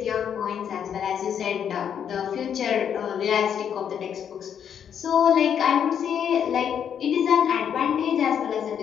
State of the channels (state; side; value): quieter; right; 8.4 dB